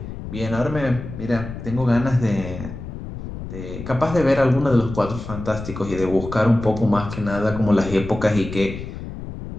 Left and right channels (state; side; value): noise; left; rumble, 9 dB below the sound